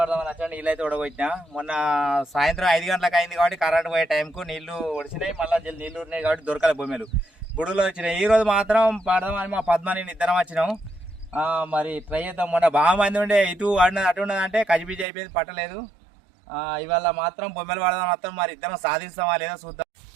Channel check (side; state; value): left; drops out; at 15.1 s